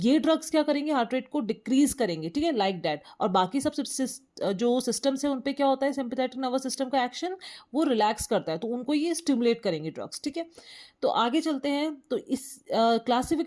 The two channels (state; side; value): identical; both; correlation 1.00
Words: ड्रग्स क्या करेंगे, हार्ट रेट को डिक्रीज करेंगे. ठीक है, लाइक दैट. और बाकी सब जो सिस्टम्स है उन पे क्या होता है, सिंपैथेटिक नर्वस सिस्टम का एक्शन वो रिलैक्स करता है, तो उनको ये स्टिमुलेट करेंगे ड्रग्स. ठीक है, तो आगे चलते हैं. तो इस